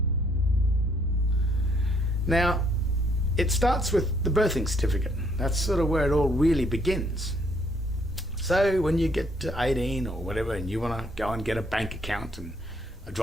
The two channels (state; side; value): normal; both; correlation 0.68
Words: Now, it starts with the birthing certificate. That's sort of where it all really begins. So when you get to 18 or whatever and you want to go and get a bank account and a